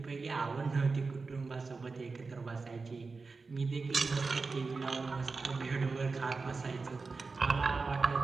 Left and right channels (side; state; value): left; quieter; 4.2 dB